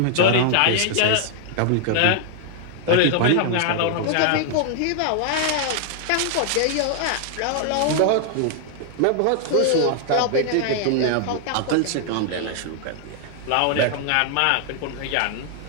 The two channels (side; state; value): both; different; correlation 0.00